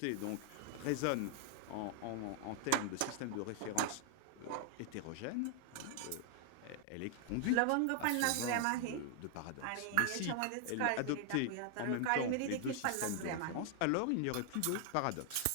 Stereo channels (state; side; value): different; both; correlation 0.00